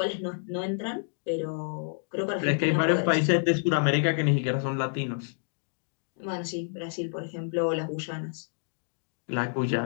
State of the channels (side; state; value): right; silent; digital silence